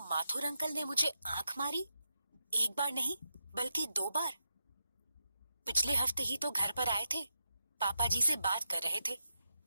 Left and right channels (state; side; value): inverted; both; correlation -0.87